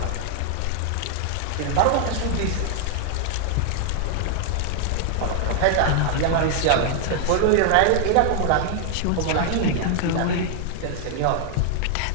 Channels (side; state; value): both; different; correlation 0.00